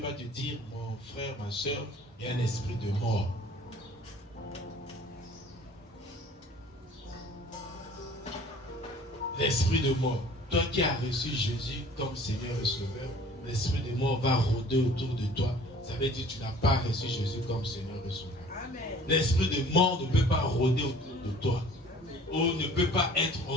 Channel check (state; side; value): normal; both; correlation 0.50